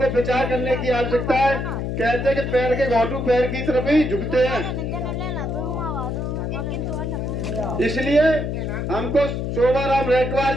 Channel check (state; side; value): noise; left; hum, 2 dB below the sound